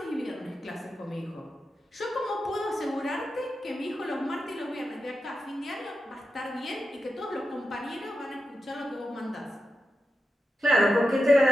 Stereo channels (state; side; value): normal; both; correlation 0.89